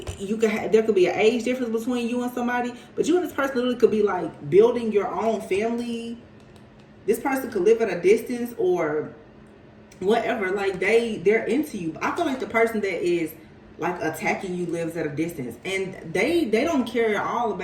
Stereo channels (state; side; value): identical; both; correlation 1.00